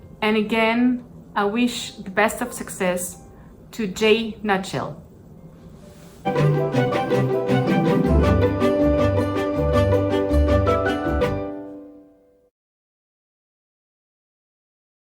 And again, I wish the best of success to J. Nutshell.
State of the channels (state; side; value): identical; both; correlation 1.00